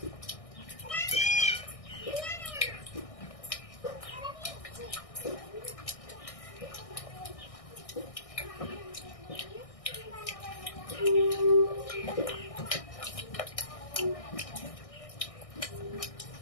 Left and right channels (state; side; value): late; right; 1.6 ms